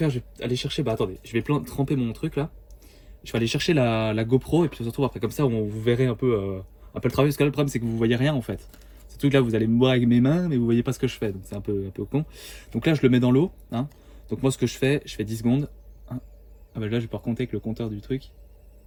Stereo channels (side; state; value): both; identical; correlation 1.00